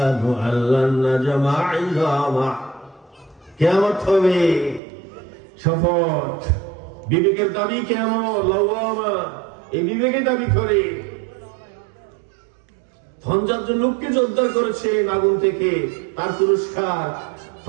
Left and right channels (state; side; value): drops out; left; at 4.8 s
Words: أن لن نجمع عظامه কিয়ামত হবে শপথ বিবেকের দাবি কিয়ামত লাওয়ামা এই বিবেকের দাবি করে 50 জন লোককে উদ্ধার করেছে আগুন থেকে তার পুরস্কার